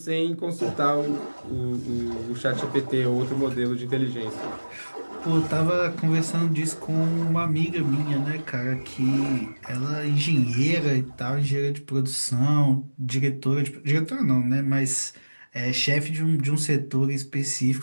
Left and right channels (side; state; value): both; inverted; correlation -1.00